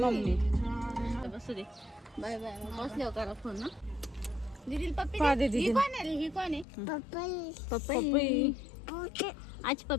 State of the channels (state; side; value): drops out; right; at 6.7 s